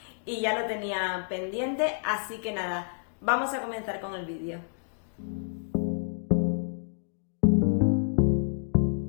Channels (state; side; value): silent; right; digital silence